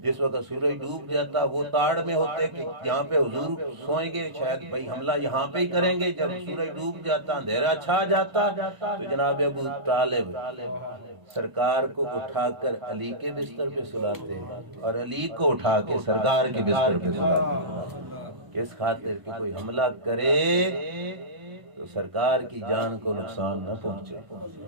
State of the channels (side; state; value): left; late; 1.0 ms